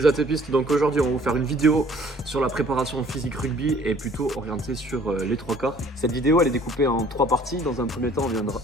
atépistes, donc aujourd'hui on va vous faire une vidéo sur la préparation physique rugby et plutôt orientée sur les trois quarts. Cette vidéo elle est découpée en 3 parties. Dans un premier temps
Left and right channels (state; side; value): normal; both; correlation 0.56